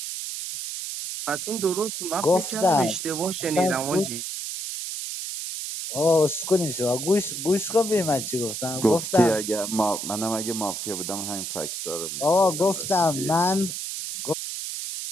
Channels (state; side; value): noise; right; hiss, 5 dB below the sound